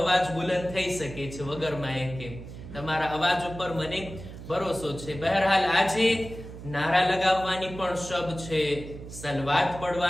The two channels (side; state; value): right; noise; hum, 13 dB below the sound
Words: અવાજ બુલંદ થઈ શકે છે વગર માઇકે. તમારા અવાજ ઉપર મને ભરોસો છે. બહરહાલ આજે નારા લગાવવાની પણ શબ છે, સલવાત